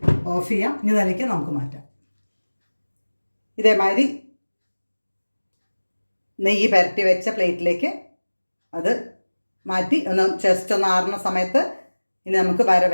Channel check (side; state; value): both; inverted; correlation -1.00